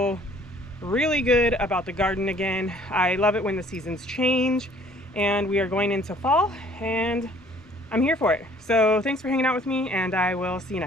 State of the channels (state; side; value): normal; both; correlation 0.57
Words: really good about the garden again. I love it when the seasons change, and we are going into fall, and I'm here for it. So thanks for hanging out with me, and I will see you